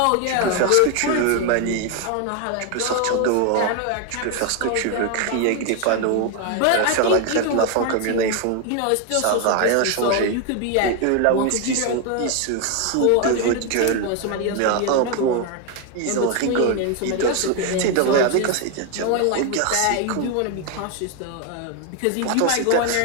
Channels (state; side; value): different; both; correlation 0.01